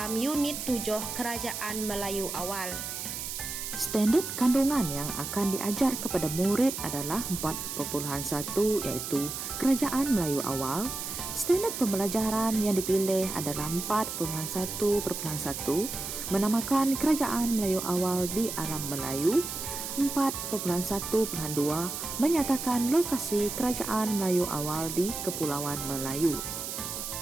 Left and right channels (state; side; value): noise; right; hiss, 6 dB below the sound